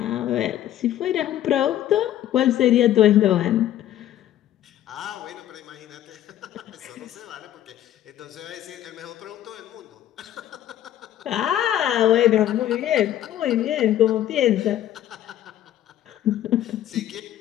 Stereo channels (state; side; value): quieter; right; 12.2 dB